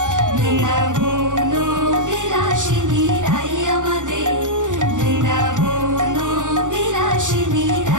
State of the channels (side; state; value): left; late; 0.86 ms